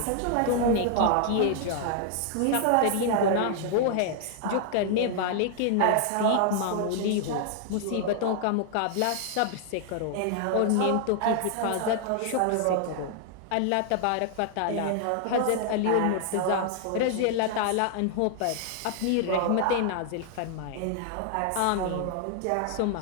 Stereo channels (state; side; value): different; both; correlation 0.00